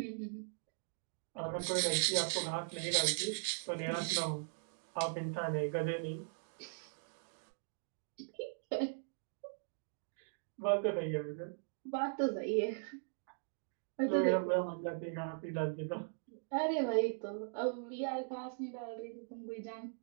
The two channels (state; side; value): silent; left; digital silence